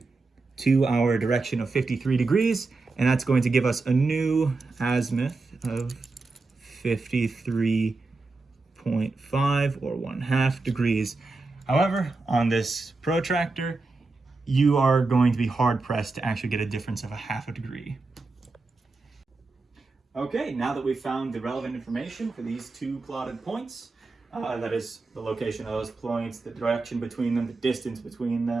to our direction of 53 degrees, and that's going to give us a new azimuth of 53.5 or 1/2 degrees. However, on this protractor, you are going to be hard pressed to actually get a difference of 1/2 degree. Okay, now that we've found the relevant information for these two plotted points, that is the location of those points, the direction between them, the distance between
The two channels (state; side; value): quieter; left; 3.7 dB